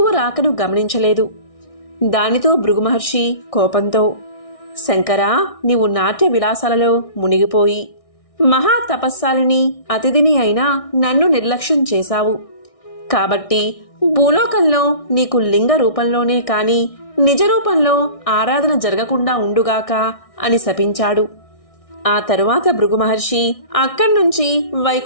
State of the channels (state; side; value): late; right; 1.6 ms